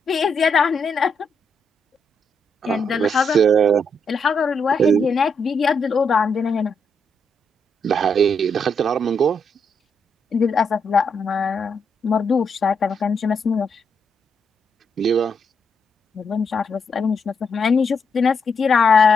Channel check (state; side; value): normal; both; correlation 0.79